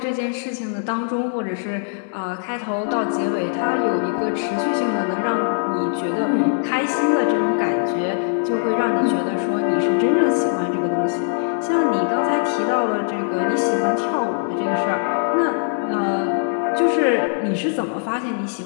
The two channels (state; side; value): silent; right; digital silence